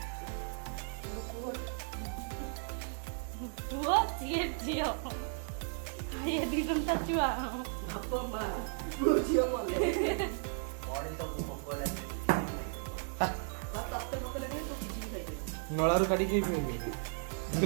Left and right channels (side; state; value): left; silent; 54 dB below the other